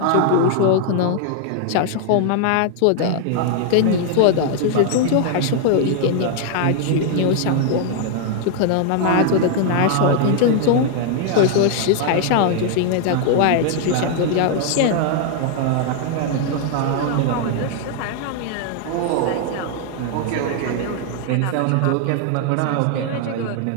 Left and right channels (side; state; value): both; different; correlation 0.00